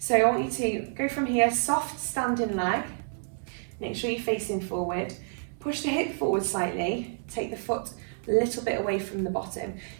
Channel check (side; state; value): left; silent; digital silence